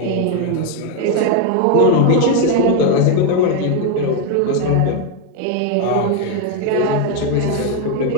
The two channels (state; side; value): different; both; correlation 0.01